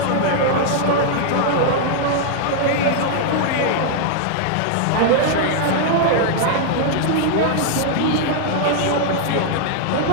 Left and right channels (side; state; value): both; different; correlation 0.00